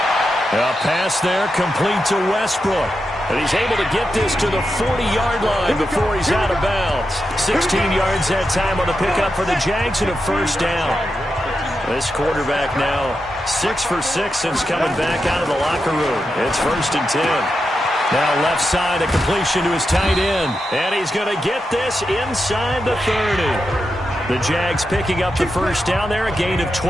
A pass there complete to Westbrook. And he's able to get this to the 40-yard line before he's out of bounds. 16 yards that time on the pickup for the Jags and a first down. This quarterback now 6 for 6 since coming back out of the locker room. It's 1st and 10. Now left side, a completion to his tight end. And he's going to get this inside the 30. The Jags picking up the first down there, a gain of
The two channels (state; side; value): normal; both; correlation 0.88